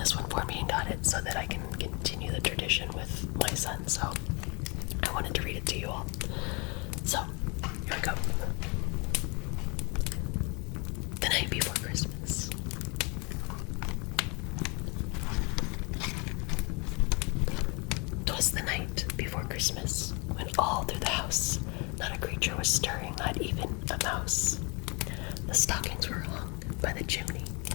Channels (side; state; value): right; quieter; 30.5 dB